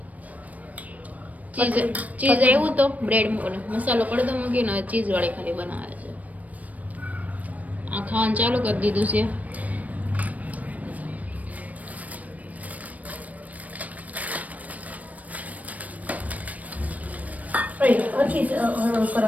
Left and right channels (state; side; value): late; left; 0.071 ms